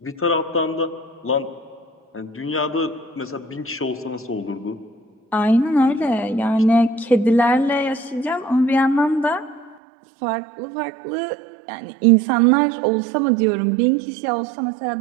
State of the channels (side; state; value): left; drops out; at 9.8 s